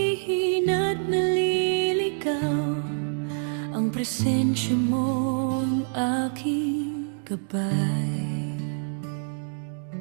naliligaw, ang presensya mo ang aking gabay.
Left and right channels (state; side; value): silent; left; digital silence